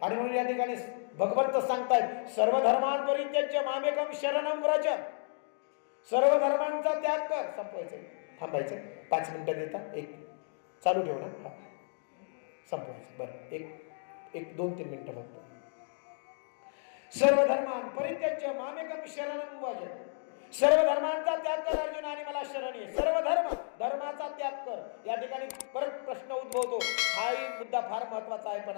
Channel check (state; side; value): silent; right; digital silence